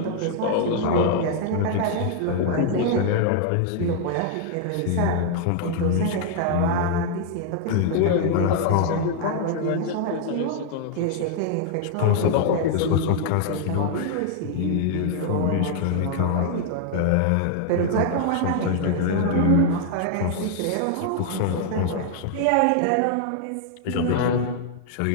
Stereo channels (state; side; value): different; both; correlation 0.00